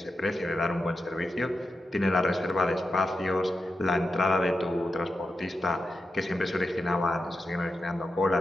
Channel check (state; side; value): normal; both; correlation 0.88